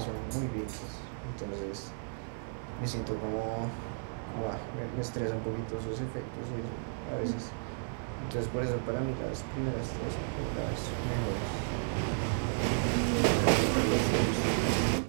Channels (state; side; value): silent; left; digital silence